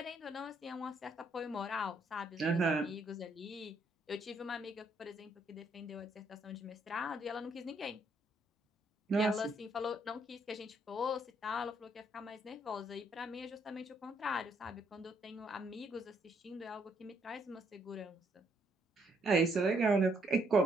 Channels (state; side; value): normal; both; correlation 0.71